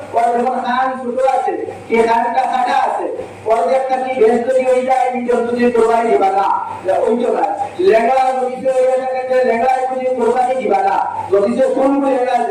ওর যখন কান ছোট আছে কে কানটা কাটা আছে ওর একটা কি বেশ তৈরি হয়ে যায় এই জন্তু দিয়ে কোরবানি দিবা না ওই তো না লেঙ্গা যদি হয়ে থাকে লেঙ্গা যদি কোরবানি দিবা না যদি কোন লেঙ্গা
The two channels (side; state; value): both; identical; correlation 1.00